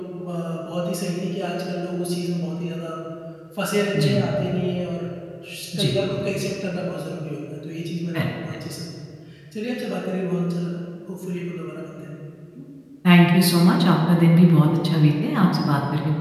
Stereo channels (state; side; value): identical; both; correlation 1.00